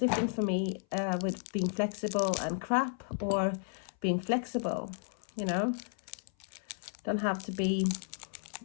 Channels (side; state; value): right; silent; 56 dB below the other